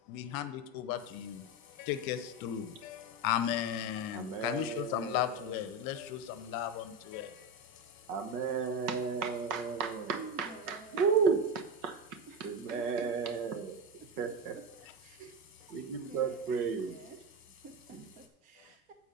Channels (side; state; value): both; normal; correlation 0.16